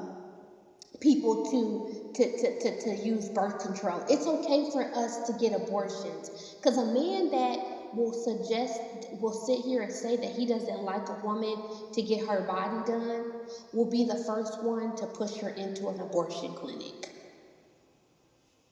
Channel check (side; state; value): both; identical; correlation 1.00